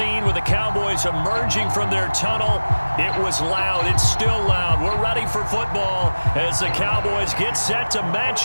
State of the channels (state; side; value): inverted; both; correlation -1.00